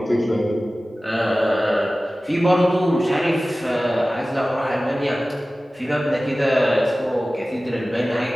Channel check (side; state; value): both; normal; correlation 0.97